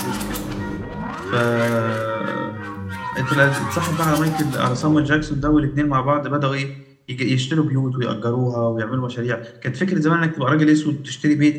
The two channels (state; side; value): identical; both; correlation 1.00